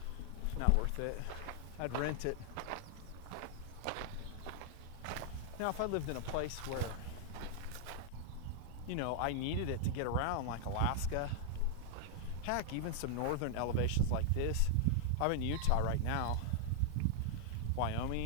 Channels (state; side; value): different; both; correlation 0.00